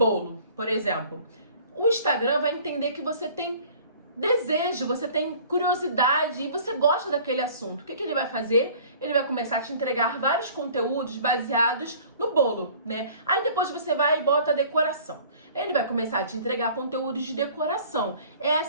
por exemplo, o Instagram vai entender que você tem desejo, você tem curiosidade e você gosta daquele assunto. O que ele vai fazer? Ele vai começar a te entregar vários conteúdos baseados no bolo, né? Aí depois você vai e bota a decoração. Ele vai começar a te entregar conteúdos de decoração. É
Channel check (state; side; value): inverted; both; correlation -0.50